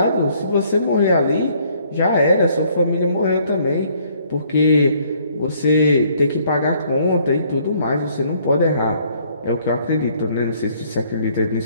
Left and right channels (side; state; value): both; inverted; correlation -0.63